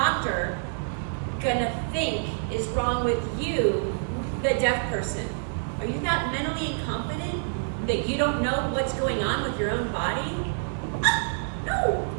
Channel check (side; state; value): left; silent; 60 dB below the other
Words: gonna think is wrong with you, the deaf person? Are you that mentally incompetent that you don't know what's going on with your own body?